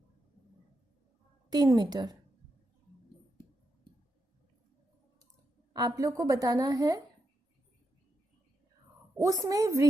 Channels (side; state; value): both; normal; correlation 0.84